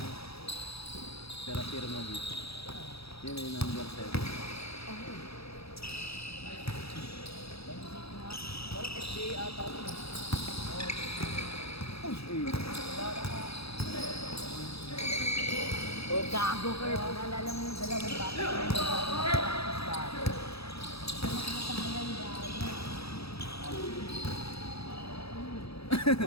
Pera firma dito. Yun yung number 7. Parang FDA ata ako. Oh, gago ka. Naalala mo yung dalawang bata.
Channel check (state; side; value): late; right; 0.77 ms